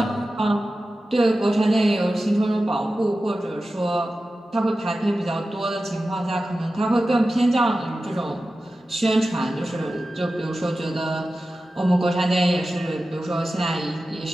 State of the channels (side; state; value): both; normal; correlation 0.94